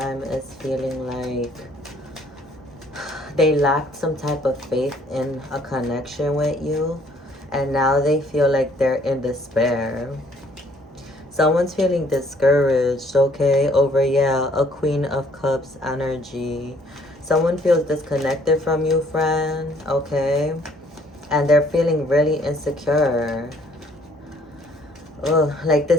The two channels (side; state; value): both; normal; correlation 0.62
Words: is feeling like they lacked some type of faith in a connection with you, and now they feel like they're in despair. Someone's feeling discouraged, okay, over, yeah, a Queen of Cups energy. Someone feels disconnected from you, friend, okay, and they're feeling really insecure. Ugh, like